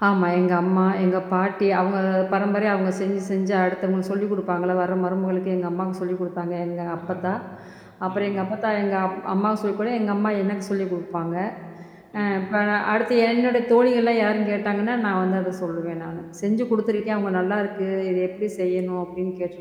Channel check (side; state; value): both; identical; correlation 1.00